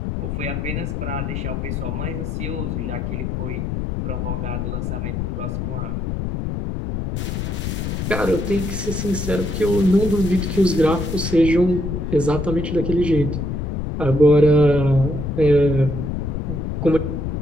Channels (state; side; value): noise; left; rumble, 3 dB below the sound